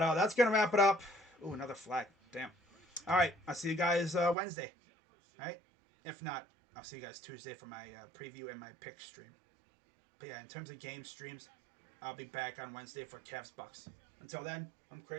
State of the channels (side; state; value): left; drops out; at 4.4 s